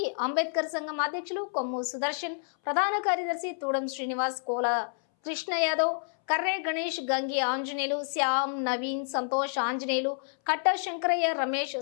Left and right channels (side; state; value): right; silent; 59 dB below the other